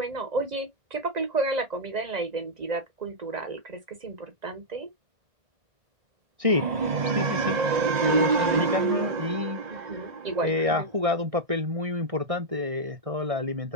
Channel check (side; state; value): left; late; 2.0 ms